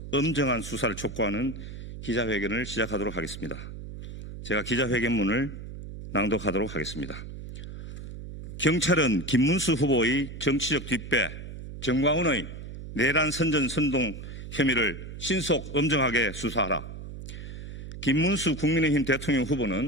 엄정한 수사를 촉구하는 기자회견을 시작하도록 하겠습니다. 제가 기자회견문을 낭독하도록 하겠습니다. 경찰은 김문수 후보의 정치적 뒷배 정광훈의 내란 선전 선동 혐의를 신속 엄정하게 수사하라. 김문수 국민의힘 대통령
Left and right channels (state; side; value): noise; right; hum, 11 dB below the sound